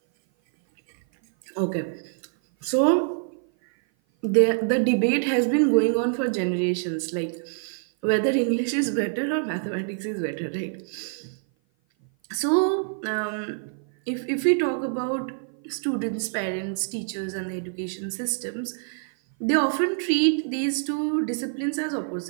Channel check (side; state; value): left; silent; 56 dB below the other